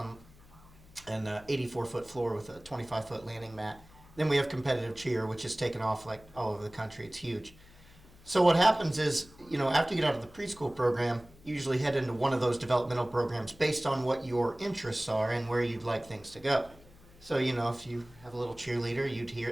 an 84-foot floor with a 25-foot landing mat. Then we have competitive cheer, which is taken off like all over the country. It's huge. So what happens is, after you get out of the preschool program, you usually head into one of those developmental programs based on what your interests are and where you'd like things to go. So, if you have a little cheerleader, you'd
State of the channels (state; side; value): noise; left; hum, 24 dB below the sound